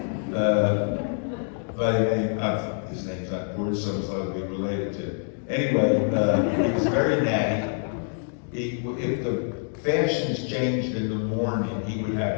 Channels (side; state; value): right; silent; 58 dB below the other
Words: by the name of, his name's not important, so it's likely to be related to. Anyway, he was very natty. If the fashions changed in the morning, he would